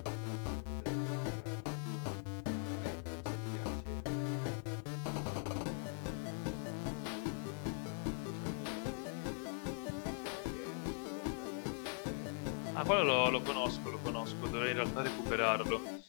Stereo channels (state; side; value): silent; right; 50 dB below the other